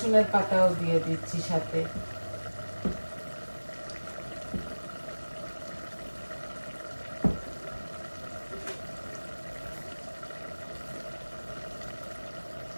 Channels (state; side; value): inverted; both; correlation -1.00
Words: পাতাও দিয়ে দিচ্ছি সাথে।